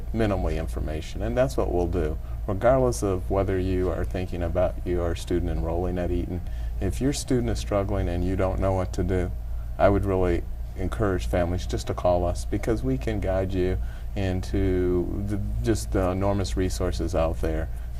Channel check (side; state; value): both; identical; correlation 1.00